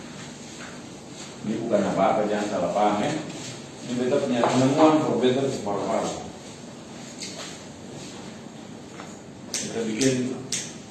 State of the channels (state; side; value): identical; both; correlation 1.00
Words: Ini bukan apa-apa, jangan salah paham ya. Ini beta punya penemuan kok, beta separuh-paruh. Kita bikin